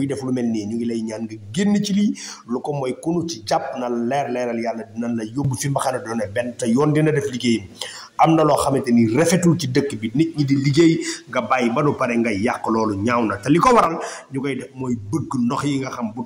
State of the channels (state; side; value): identical; both; correlation 1.00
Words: def lu mel nii ñu ngi lay ñaan nga génn ci lii lu ko mooy kunu ci jàpp na leeral yàlla dinañ la yóbbu fi mbaxane doone benn te yoon dina def liggéeyam am na loo xamante ni rafetul ci dëkk bi nit ñi di liggéey nga bàyyi ba nu pare ngay yàq loolu ñaaw na te li ko waral ñu koy def mooy bëgg ndox yi nga xam bu